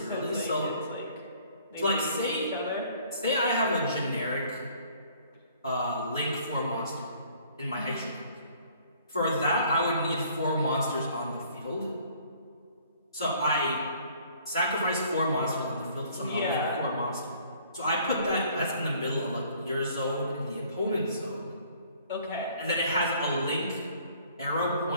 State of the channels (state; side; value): inverted; both; correlation -0.58